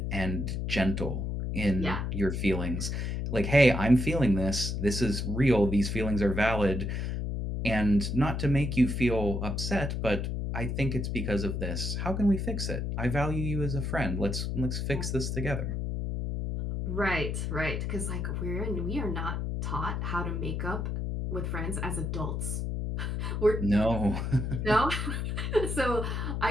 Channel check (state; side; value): noise; left; hum, 2 dB below the sound